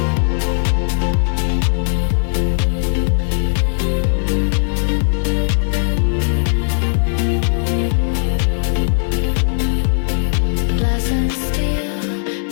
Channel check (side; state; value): right; silent; digital silence